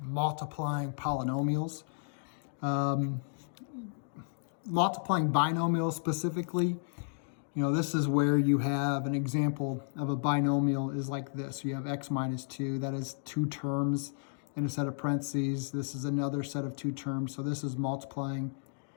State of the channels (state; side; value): silent; right; digital silence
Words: multiplying polynomials. Multiplying binomials specifically, this is where you have an example of a binomial is like this. You have x minus 2, that is two terms in a set of parentheses. This is another set of two terms, so this is multiplying